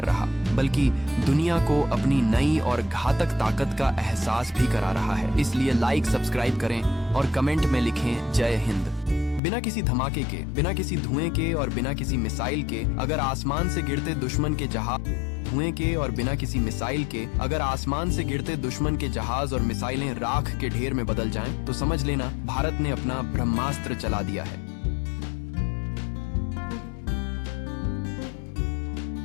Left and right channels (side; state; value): right; drops out; at 9.4 s